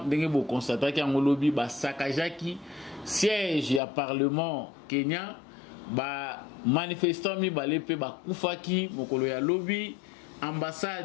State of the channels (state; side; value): drops out; right; at 3.8 s